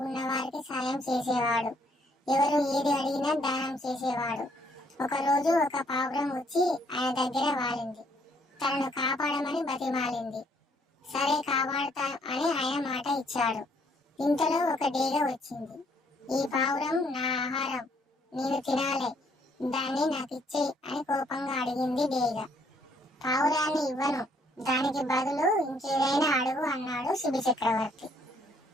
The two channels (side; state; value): both; normal; correlation 0.67